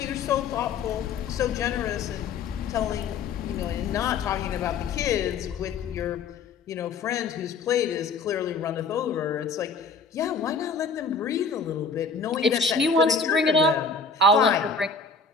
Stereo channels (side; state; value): right; quieter; 4.5 dB